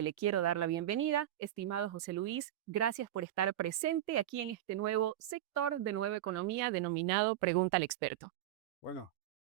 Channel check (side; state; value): left; quieter; 12.7 dB